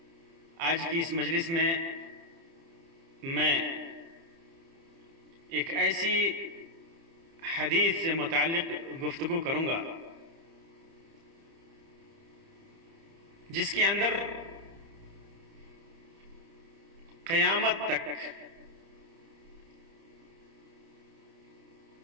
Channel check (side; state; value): left; late; 30 ms